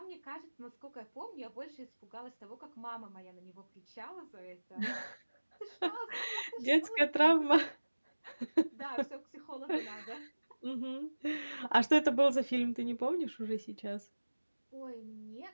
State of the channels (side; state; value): both; inverted; correlation -1.00